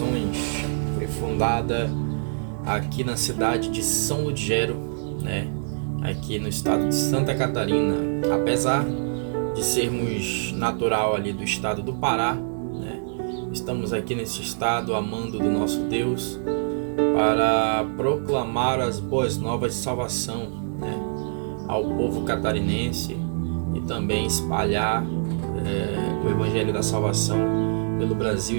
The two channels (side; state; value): left; silent; 62 dB below the other